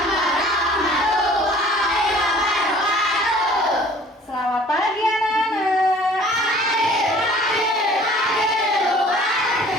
warahmatullahi wabarakatuh. Selamat pagi anak-anak. Pagi luar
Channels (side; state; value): both; normal; correlation 0.51